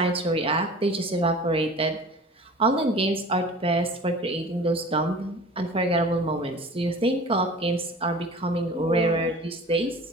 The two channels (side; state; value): both; normal; correlation 0.41